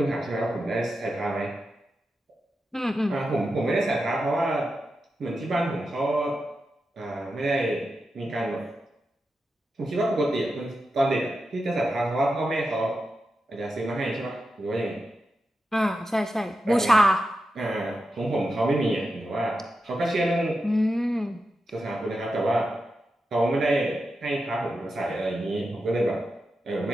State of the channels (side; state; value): both; normal; correlation 0.89